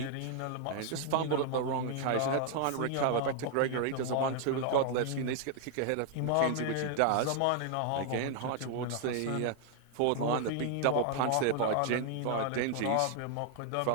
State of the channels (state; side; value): different; both; correlation 0.00